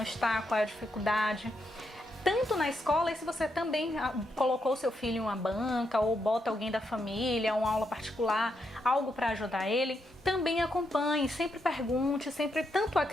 está, qual é a dificuldade. Tanto na escola, e se você também colocou seu filho em uma banca ou bota alguém da família, uma aula particular, algo para ajudar ele, também acompanhe, sempre pergunte, sempre tanto a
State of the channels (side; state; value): both; normal; correlation 0.81